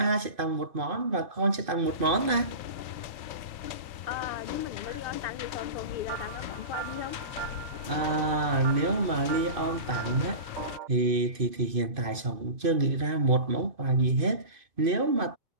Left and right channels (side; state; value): left; late; 2.5 ms